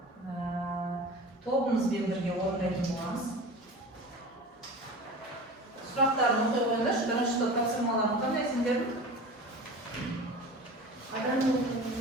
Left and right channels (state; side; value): normal; both; correlation 0.35